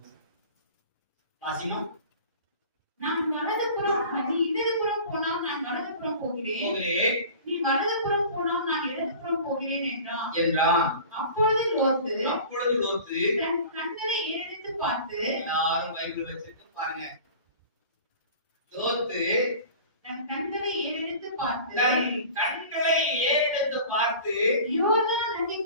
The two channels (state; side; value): inverted; both; correlation -0.41